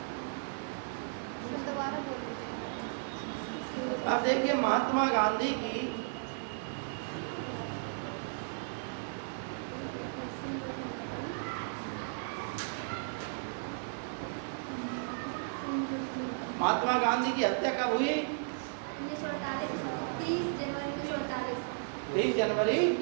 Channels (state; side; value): silent; left; digital silence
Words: दोबारा बोल दीजिए। अब देखिए, महात्मा गांधी की हत्या कब हुई? 1948, 30 जनवरी 1948। 20 जनवरी